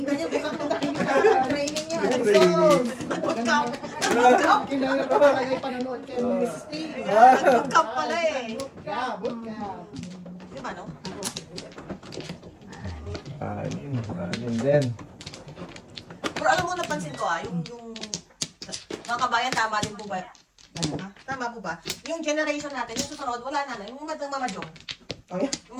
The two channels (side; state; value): both; identical; correlation 1.00